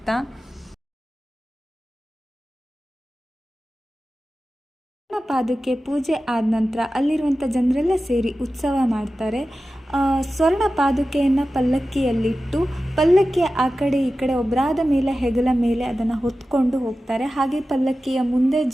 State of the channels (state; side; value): normal; both; correlation 0.94